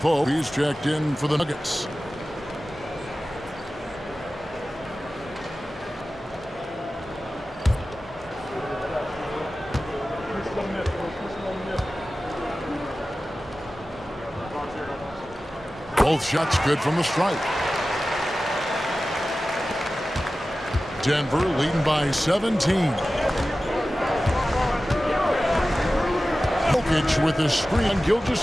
he's checked in for the Nuggets. Both shots good from the stripe. Denver leading by 17. Jokic with the screen on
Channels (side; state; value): both; normal; correlation 0.95